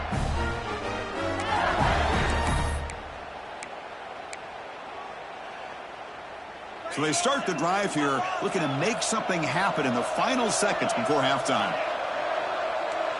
So they start the drive here, looking to make something happen in the final seconds before halftime.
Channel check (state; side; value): identical; both; correlation 1.00